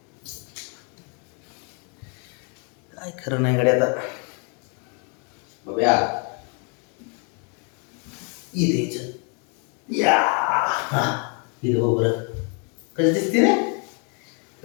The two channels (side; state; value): right; quieter; 36.9 dB